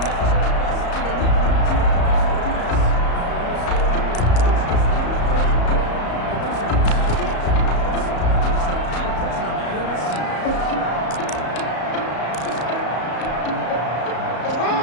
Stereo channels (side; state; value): right; late; 34 ms